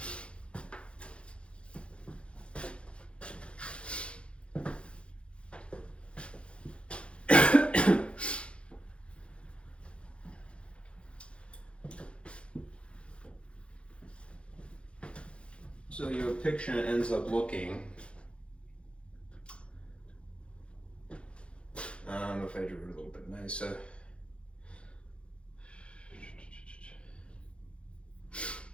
So your picture ends up looking, if I drew it a little bit nicer,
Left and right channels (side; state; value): right; late; 0.059 ms